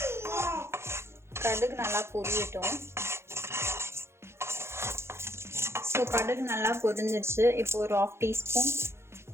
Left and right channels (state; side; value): late; left; 0.12 ms